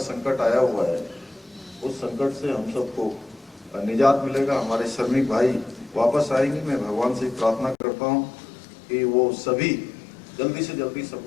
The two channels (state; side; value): drops out; right; at 7.8 s